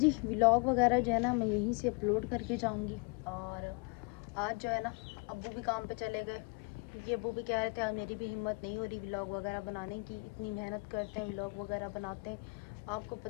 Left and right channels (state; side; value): quieter; right; 31.0 dB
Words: व्लॉग वगैरह जो है ना मैं यहीं से अपलोड करके जाऊंगी। और आज जो है ना अब्बू भी काम पे चले गए, क्योंकि अब्बू भी कह रहे थे आज मेरी भी हिम्मत नहीं हो रही व्लॉग वगैरह बनाने की, इतनी मेहनत करते हैं व्लॉग वगैरह बनाते हैं। आपको